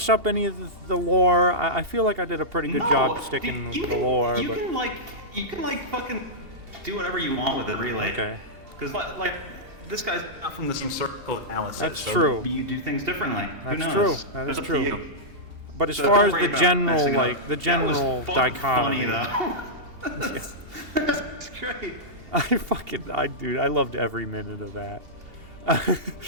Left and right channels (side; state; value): left; late; 2.8 ms